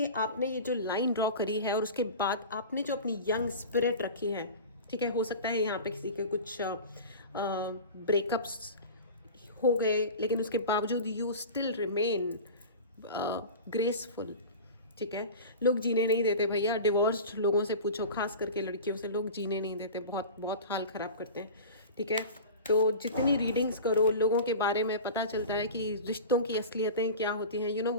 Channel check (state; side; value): inverted; both; correlation -0.33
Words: आपने ये जो लाइन ड्रॉ करी है और उसके बाद आपने जो अपनी यंग स्पिरिट रखी है, ठीक है। हो सकता है यहाँ पे किसी के कुछ ब्रेकअप्स हो गए, लेकिन उसके बावजूद यू स्टिल रिमेन ग्रेसफुल, ठीक है। लोग जीने नहीं देते भैया, डिवोर्स्ड लोगों से पूछो, खास करके लड़कियों से, लोग जीने नहीं देते, बहुत बहुत हाल ख़राब करते हैं, ठीक है। तो जितनी रीडिंग्स करो, लोगों के बारे में पता चलता है कि रिश्तों की असलियतें क्या होती हैं। यू नो